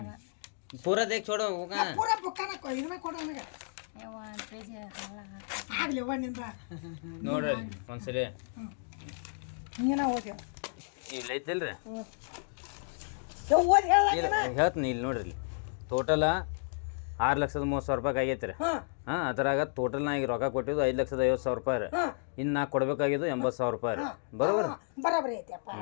बात पूरा देख छोड़ो होगा ಪೂರ ಬುಕ್ಕನ ಇದನ್ನ ಕೊಡು ನನಗೆ ये वहाँ पे जे हाला ಆಗ್ಲಿ ಅವನಿಂದ ನೋಡ್ರಿ ಒಂದ್ಸರಿ ನೀನ ಓದಿ ಇಲ್ಲ ಐತಿಲ್ರಿ ಓದಿ ಹೇಳ ಹೇಳ್ತೀನಿ ಇಲ್ಲಿ ನೋಡ್ರಿ ಇಲ್ಲಿ ಟೋಟಲ್ 6,30,000 ರೂಪಾಯಿ ಆಗೈತೆ ರೀ ಹಾಂ ಹಾಂ ಅದ್ರಾಗ ಟೋಟಲ್ ನಾ ಈಗ ರೊಕ್ಕ ಕೊಟ್ಟಿದ್ದು 5,50,000 ರೂಪಾಯಿ ರೀ ಇನ್ನು ನಾ ಕೊಡಬೇಕಾಗಿದ್ದು 80,000 ರೂಪಾಯಿ ರೀ ಬರೋಬರ್ ಬರಾಬರಿ ಐತಿಯಪ್ಪ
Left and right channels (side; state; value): right; silent; digital silence